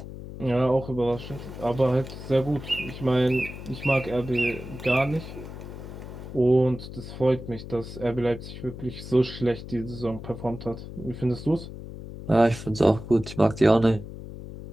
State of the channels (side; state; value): left; noise; hum, 11 dB below the sound